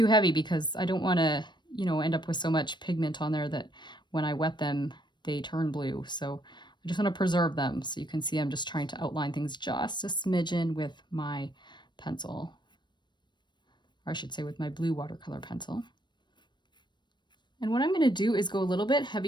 heavy because I don't want to, you know, end up with so much pigment on there that when I wet them, they turn blue. So I just want to preserve them. So you can see I'm just trying to outline things just a smidgen with my pencil, or I should say with my blue watercolor pencil. And what I'm going to do is go a little bit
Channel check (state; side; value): late; right; 0.22 ms